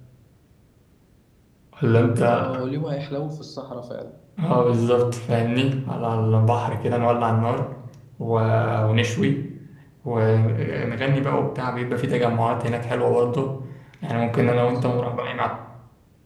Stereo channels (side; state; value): both; identical; correlation 1.00